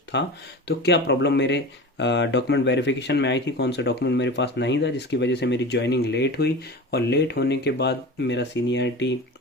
था तो क्या प्रॉब्लम मेरे डॉक्यूमेंट वेरिफिकेशन में आई थी, कौन सा डॉक्यूमेंट मेरे पास नहीं था जिसकी वजह से मेरी ज्वाइनिंग लेट हुई, और लेट होने के बाद मेरा सीनियरिटी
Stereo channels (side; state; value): both; normal; correlation 0.32